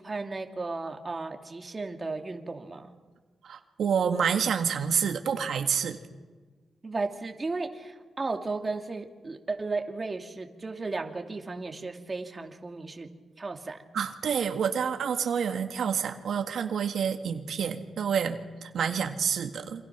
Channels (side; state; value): left; quieter; 5.9 dB